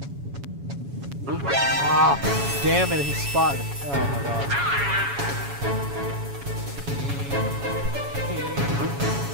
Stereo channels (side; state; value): left; late; 7.1 ms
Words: Ah, damn it, he spotted. Oh my god.